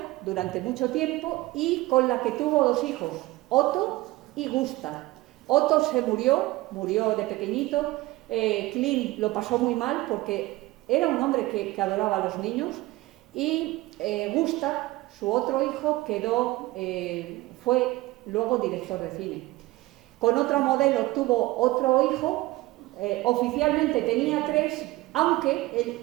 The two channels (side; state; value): left; quieter; 19.2 dB